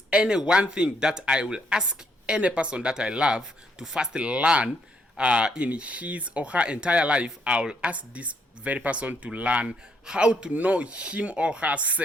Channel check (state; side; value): normal; both; correlation 0.73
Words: any one thing that I will ask any person that I love to first learn in his or her entire life, I will ask this very person to learn how to know him or